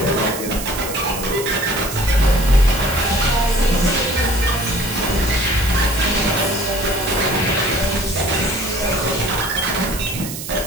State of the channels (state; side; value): noise; right; hiss, 9 dB below the sound